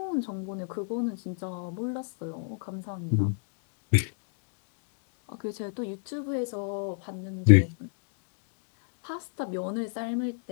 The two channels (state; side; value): silent; right; 57 dB below the other